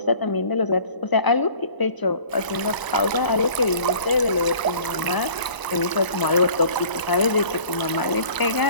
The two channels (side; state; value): right; late; 1.0 ms